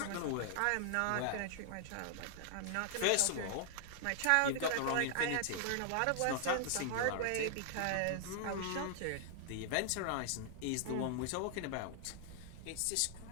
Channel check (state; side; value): different; both; correlation 0.00